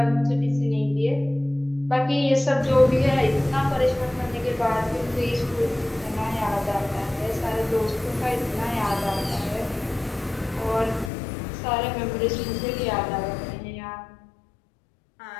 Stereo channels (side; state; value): right; drops out; at 11.1 s